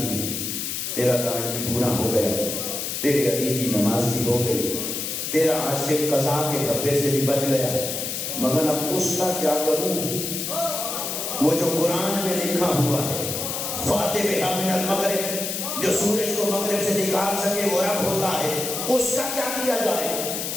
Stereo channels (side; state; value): left; noise; hiss, 3 dB below the sound